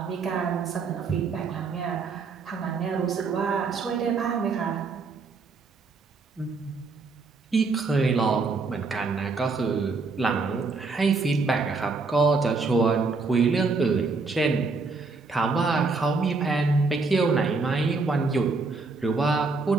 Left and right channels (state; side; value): quieter; left; 4.2 dB